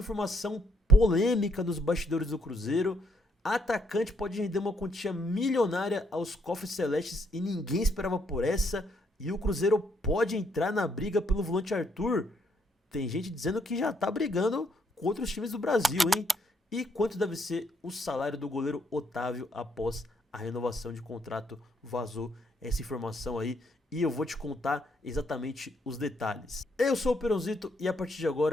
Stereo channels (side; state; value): both; normal; correlation 0.73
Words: polêmica nos bastidores do Cruzeiro. Atacante pode render uma quantia milionária aos cofres celestes e ninguém esperava por essa. E o Cruzeiro pode entrar na briga pelo volante Arthur. Tem gente dizendo que já tá brigando com outros times do Brasil, hein? E quanto deve ser o salário do goleiro Otávio após a renovação de contrato? Vazou essa informação aí e eu vou te contar exatamente os detalhes. Eu sou o Peronzito e a partir de